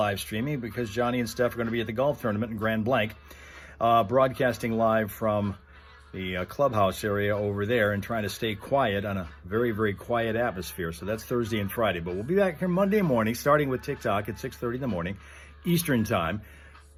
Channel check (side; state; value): both; identical; correlation 1.00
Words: streaming because Johnny and Steph are going to be at the golf tournament in Grand Blanc, broadcasting live from the clubhouse area over there and trying to stay quiet on a very, very quiet atmosphere. So that's Thursday and Friday. But we'll be back here Monday morning, starting with TikTok at 6:30 in the morning, Eastern time.